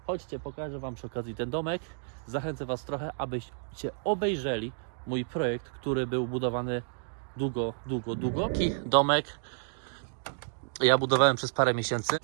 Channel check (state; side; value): silent; left; digital silence